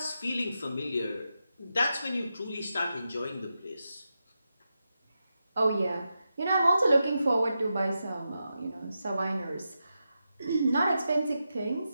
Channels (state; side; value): inverted; both; correlation -0.88